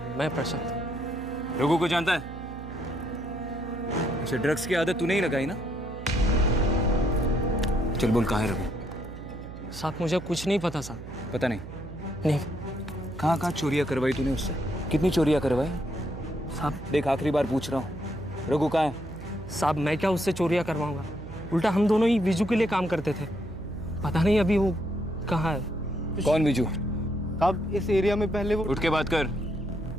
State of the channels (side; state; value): right; noise; hum, 12 dB below the sound